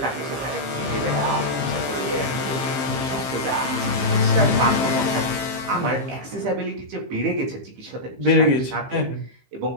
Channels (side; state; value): left; late; 15 ms